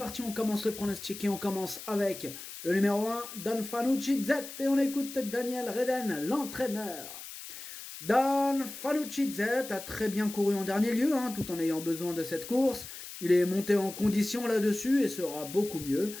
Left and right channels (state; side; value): noise; left; hiss, 12 dB below the sound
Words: on commence le pronostic et on commence avec le numéro 1, Don Fanucci Z, et on écoute Daniel Reden, l'entraîneur. Dan Fanucci Z a très bien couru en dernier lieu, tout en ayant besoin de cette course. Il est monté en condition là-dessus et sera beaucoup mieux.